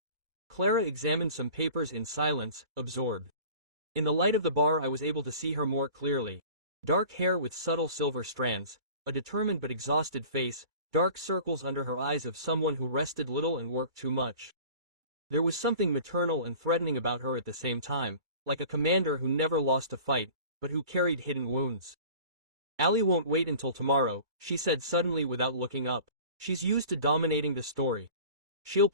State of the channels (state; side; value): late; left; 2.2 ms